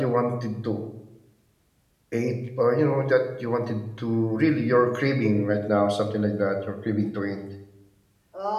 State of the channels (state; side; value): identical; both; correlation 1.00